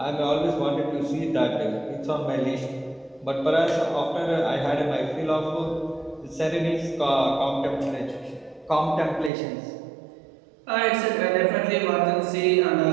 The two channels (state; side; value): drops out; left; at 9.3 s